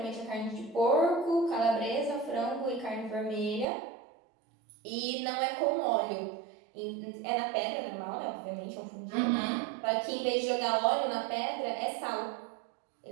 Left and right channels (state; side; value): drops out; left; at 3.7 s